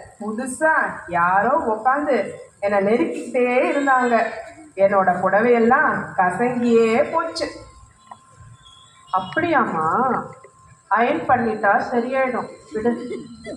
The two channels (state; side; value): identical; both; correlation 1.00